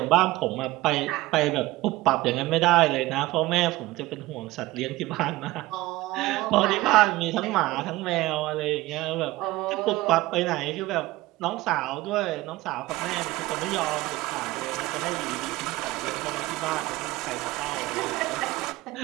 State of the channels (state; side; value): quieter; left; 18.6 dB